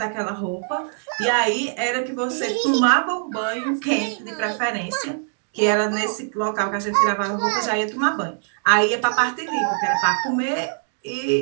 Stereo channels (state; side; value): silent; left; digital silence